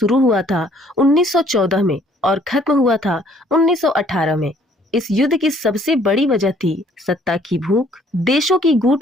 हुआ था 1914 में और खत्म हुआ था 1918 में। इस युद्ध की सबसे बड़ी वजह थी सत्ता की भूख, देशों की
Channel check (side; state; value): both; normal; correlation 0.60